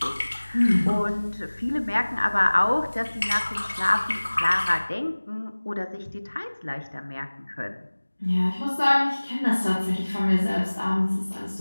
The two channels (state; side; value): inverted; both; correlation -1.00